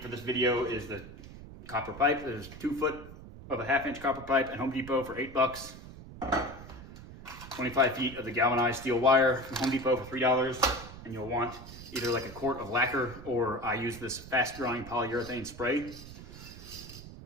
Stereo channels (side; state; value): right; noise; rumble, 15 dB below the sound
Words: this video is the copper pipe. There's 2 foot of a 1/2 inch copper pipe at Home Depot for $8. 25 feet of the galvanized steel wire from Home Depot for $3. And you'll want either like a quart of lacquer, or I use this fast drying polyurethane spray.